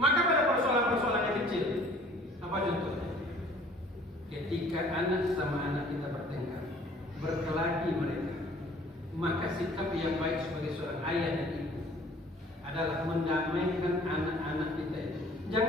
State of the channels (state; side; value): normal; both; correlation 0.53